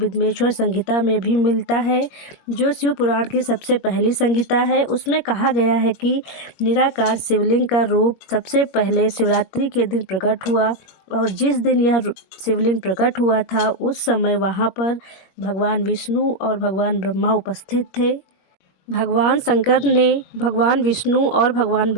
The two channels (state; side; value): late; right; 21 ms